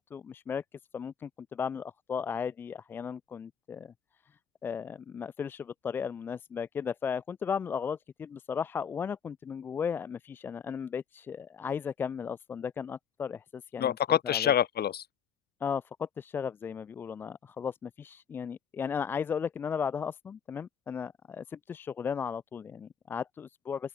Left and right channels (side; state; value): right; quieter; 7.4 dB